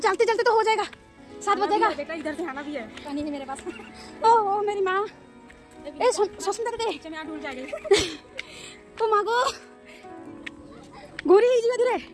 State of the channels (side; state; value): both; identical; correlation 1.00